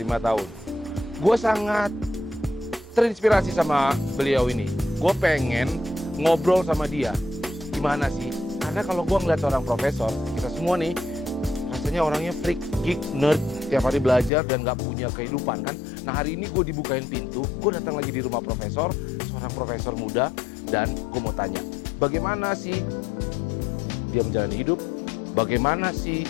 tahun. Gue sangat terinspirasi sama beliau ini. Gue pengen ngobrol sama dia. Gimana sih? Karena kalau gue ngeliat seorang profesor, kita semua nih, rasanya orangnya freak, geek, nerd, tiap hari belajar dan gak punya kehidupan kan. Nah hari ini gue dibukain pintu, gue datang lagi di rumah profesor, seorang profesor muda, dan gue mau tanya, bagaimana sih dia menjalani hidup, bagaimana sih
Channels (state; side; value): drops out; right; at 14.3 s